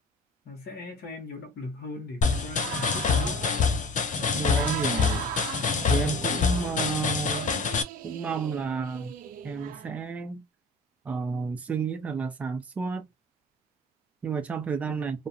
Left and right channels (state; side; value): normal; both; correlation 0.43